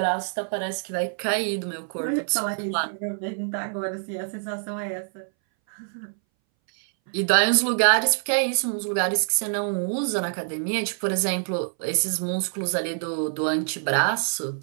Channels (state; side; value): silent; left; 60 dB below the other